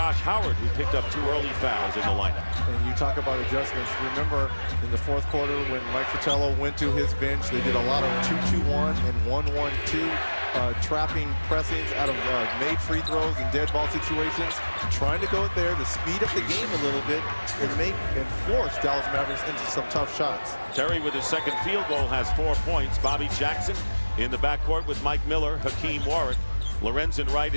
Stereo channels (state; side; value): inverted; both; correlation -1.00